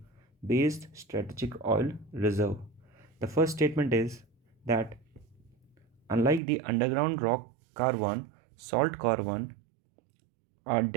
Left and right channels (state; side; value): drops out; left; at 6.4 s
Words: based strategic oil reserve. The first statement is that unlike the underground rock carbon, salt carbon are